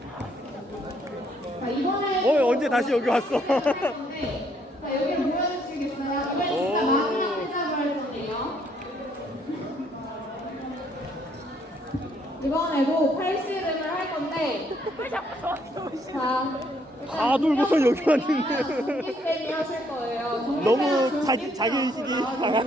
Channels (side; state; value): both; normal; correlation 0.69